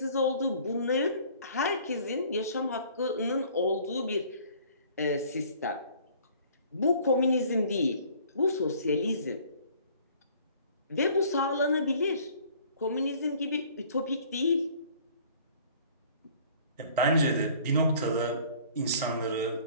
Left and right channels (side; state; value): both; inverted; correlation -0.53